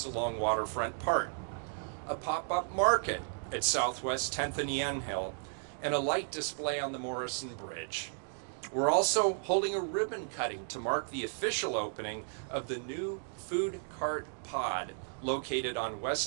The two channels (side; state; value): left; silent; digital silence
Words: along Waterfront Park, a pop-up market at Southwest 10th and Yamhill, and a light display on the Morrison Bridge. We're also holding a ribbon cutting to mark the official opening of the new food cart pod located on